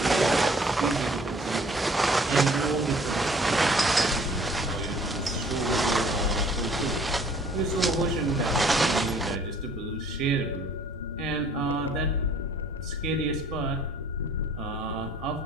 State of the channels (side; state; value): both; normal; correlation 0.56